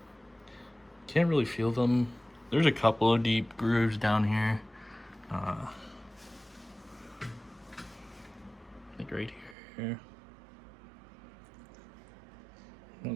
Can't really feel them. There's a couple of deep grooves down here. Like right here. Oh,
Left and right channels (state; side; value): drops out; left; at 9.6 s